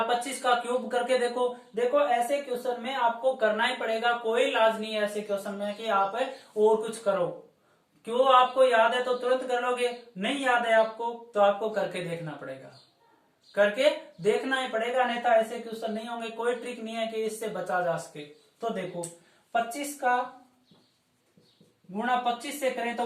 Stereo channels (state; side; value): identical; both; correlation 1.00